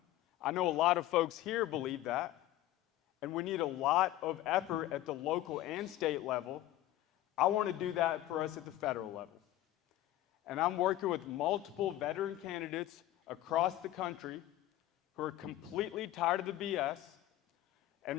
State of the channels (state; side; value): quieter; right; 14.6 dB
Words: I know a lot of folks here believe that. And we need a lot of effort at the local and state level. I want to do that for us at the federal level. And I'm working with multiple veteran candidates across the country who are completely tired of the BS, and